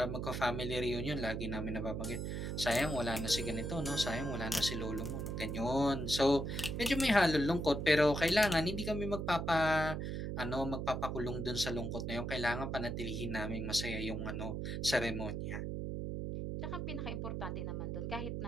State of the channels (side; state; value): right; noise; hum, 3 dB below the sound